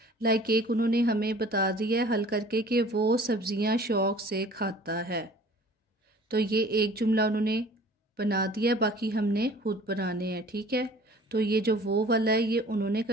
लाइक एक उन्होंने हमें बता दिया है हल करके कि वो सब्जियां शौक से खाता है, तो ये एक जुमला उन्होंने बना दिया, बाकी हमने खुद बनाने हैं, ठीक है। तो ये जो वो वाला है ये उन्होंने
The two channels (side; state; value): both; normal; correlation 0.48